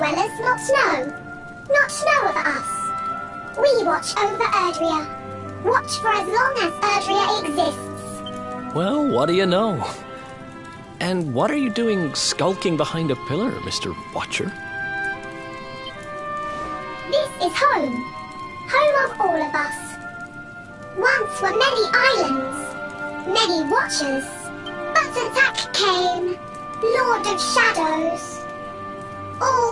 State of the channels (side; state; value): both; identical; correlation 1.00